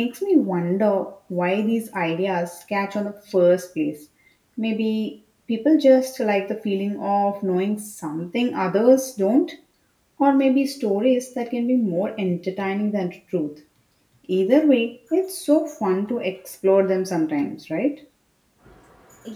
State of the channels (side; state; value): both; identical; correlation 1.00